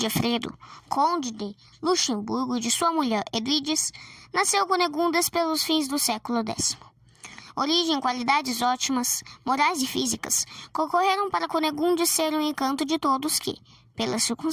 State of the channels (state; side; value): identical; both; correlation 1.00